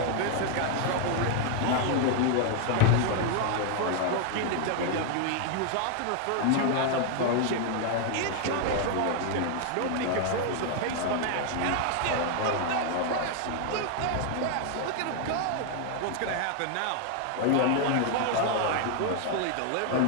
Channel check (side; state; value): both; different; correlation 0.00